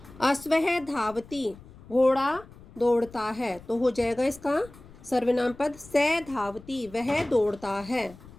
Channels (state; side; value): noise; left; rumble, 21 dB below the sound